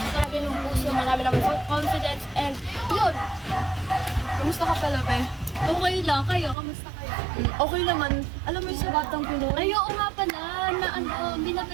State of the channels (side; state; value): left; drops out; at 6.6 s